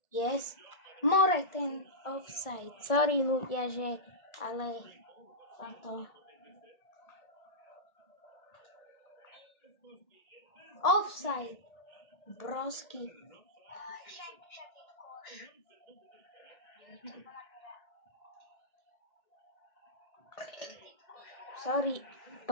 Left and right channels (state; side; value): late; right; 1.7 ms